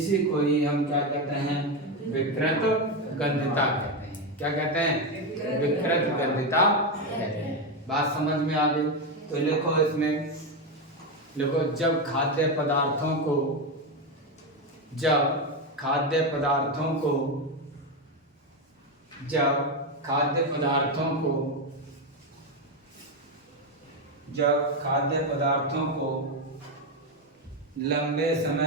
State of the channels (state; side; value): normal; both; correlation 0.10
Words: को ही हम क्या कहते हैं, विकृत गंधता कहते हैं। क्या कहते हैं, विकृत गंधता कहते हैं। बात समझ में आ गई, तो लिखो इसमें, लिखो जब खाद्य पदार्थों को जब खाद्य पदार्थों को लंबे